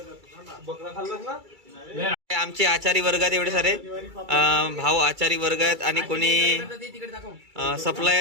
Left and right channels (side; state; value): left; late; 2.3 ms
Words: आमचे आचारी वर्गात एवढे सारे भाऊ आचारी वर्ग आहेत आणि कोणी